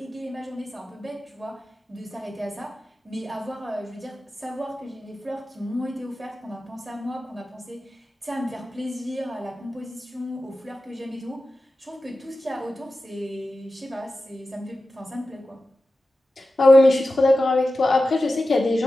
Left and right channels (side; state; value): both; normal; correlation 0.93